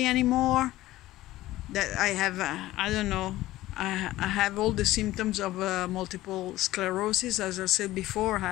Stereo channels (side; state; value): right; quieter; 16.2 dB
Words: anymore, that I have, I don't know, I have all the symptoms of multiple sclerosis. As I said before,